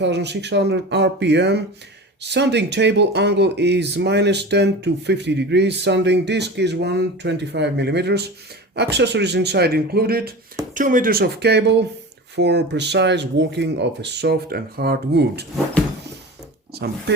RPM. Sanding table angle is -10 to 50 degrees. Sanding disc is 125 millimeters. Accessories inside included 2 meters of cable for precise working of a soft and hard wood. Some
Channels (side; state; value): both; normal; correlation 0.32